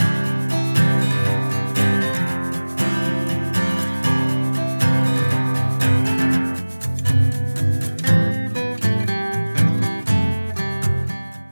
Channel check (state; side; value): inverted; both; correlation -1.00